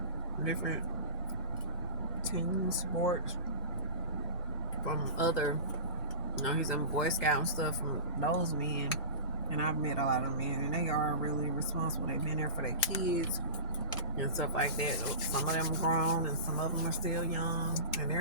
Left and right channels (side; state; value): both; inverted; correlation -0.32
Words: different team sports from other, he's in Boy Scout and stuff from those men. And I've met a lot of men, and they are really responsible. They've been there for their kids and stuff like that. So some of them are grown, and some of them are still young, and